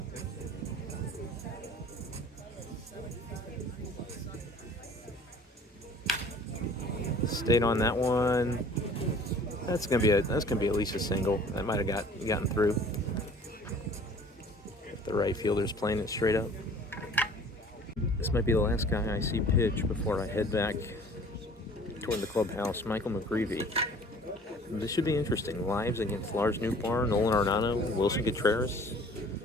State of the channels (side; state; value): both; normal; correlation 0.50